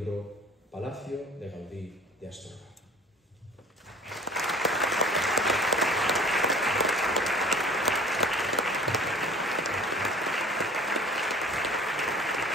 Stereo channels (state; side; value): normal; both; correlation 0.46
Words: Palacio de Gaudí de Astorga.